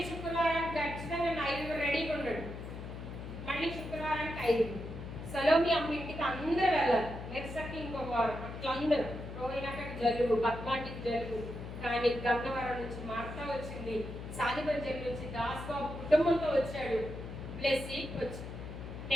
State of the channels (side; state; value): left; noise; hum, 9 dB below the sound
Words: శుక్రవారానికి ఖచ్చితంగా 5 రెడీగా ఉన్నాడు. మళ్ళీ శుక్రవారానికి 5. సలోమి అమ్మ ఇంటికి అందరూ వెళ్ళాలి. నెక్స్ట్ ఇంకొక వారం అట్లా అందరూ. రోహిణాకి జలుబు, పద్మాటికి జలుబు. కానీ గన్నవరం నుంచి మార్తా వచ్చింది, సాదిబంజర్ నుంచి దాస్ బాబు కుటుంబంతో వచ్చాడు. బ్లెస్సి వచ్చి